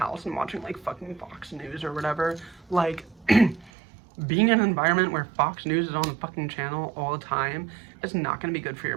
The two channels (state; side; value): drops out; left; at 3.7 s